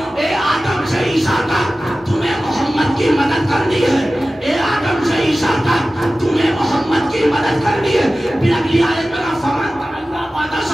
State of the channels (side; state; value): both; normal; correlation 0.96